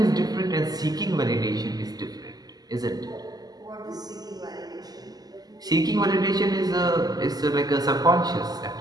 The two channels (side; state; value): left; late; 0.19 ms